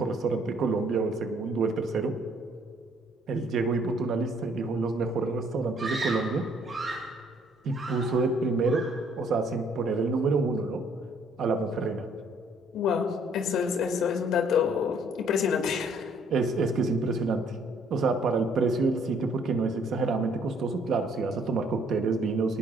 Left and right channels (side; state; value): both; normal; correlation 0.63